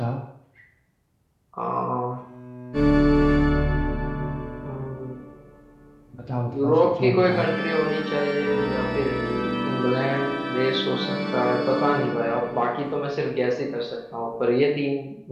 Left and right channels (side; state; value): both; identical; correlation 1.00